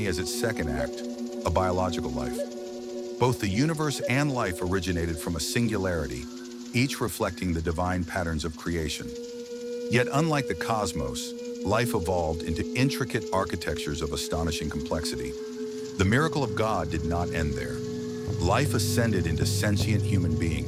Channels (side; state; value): both; identical; correlation 1.00